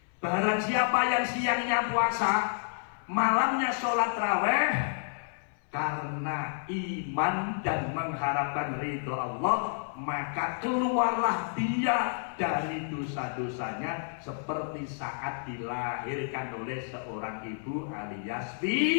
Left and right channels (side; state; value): right; silent; 58 dB below the other